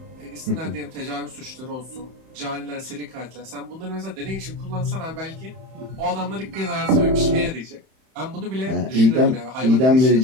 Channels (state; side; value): late; left; 31 ms